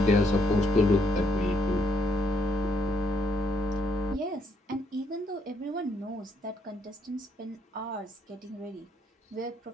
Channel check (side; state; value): both; normal; correlation 0.72